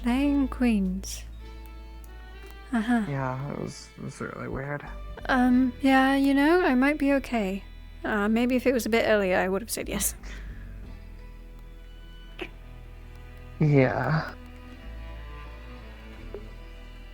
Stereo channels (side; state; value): both; identical; correlation 1.00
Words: queens. Uh-huh. Yeah, it was really weird. Yeah, you know, I might be okay. Maybe if it was a bit earlier, I would have said yes. Yeah.